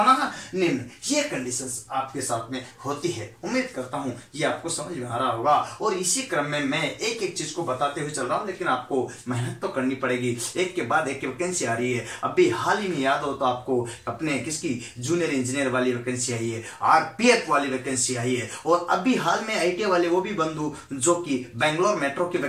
है? निम्न। ये कंडीशंस आपके साथ में होती है। उम्मीद करता हूं ये आपको समझ में आ रहा होगा। और इसी क्रम में मैं एक एक चीज को बताते हुए चल रहा हूं, लेकिन आपको मेहनत तो करनी पड़ेगी। एक के बाद एक वैकेंसी आ रही है। अभी हाल ही में याद हो तो आपको अपने किसकी जूनियर इंजीनियर वाली वैकेंसी आई है, आरपीएफ वाली वैकेंसी आई है, और अभी हाल में आईटीआई वाले वो भी बंधु जो कि बेंगलोर मेट्रो की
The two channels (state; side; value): identical; both; correlation 1.00